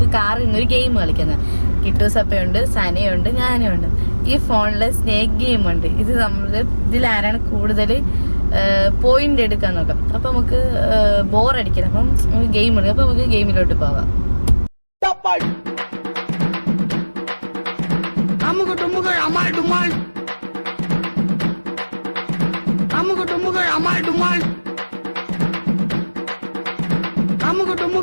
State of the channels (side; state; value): both; inverted; correlation -1.00